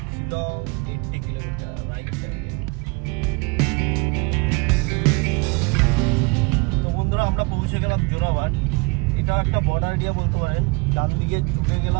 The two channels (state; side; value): quieter; left; 29.4 dB